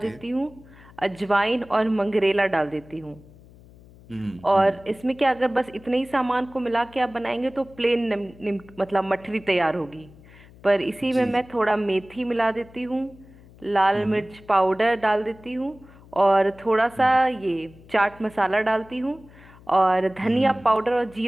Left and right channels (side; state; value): left; noise; hum, 23 dB below the sound